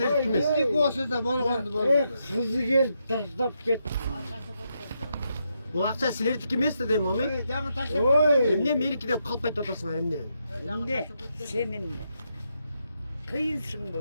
эмес. Bizdeki olsa da bolğandı Kızı geldi taşlap gitti. Бул акча силердики эмес да дейм, ами. Dağın taşla. Oy. Эмне меники деп калп айтып атасыңар эмне? Ne? Senin kıyınsın mı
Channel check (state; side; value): inverted; both; correlation -0.81